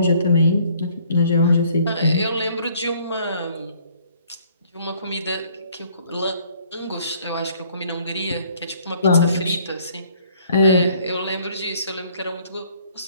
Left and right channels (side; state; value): both; inverted; correlation -0.61